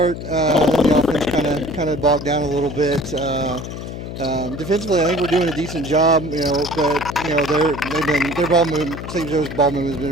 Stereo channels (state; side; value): noise; left; hum, 8 dB below the sound